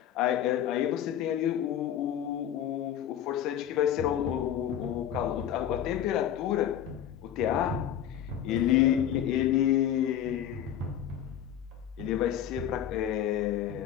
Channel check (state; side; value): quieter; right; 10.4 dB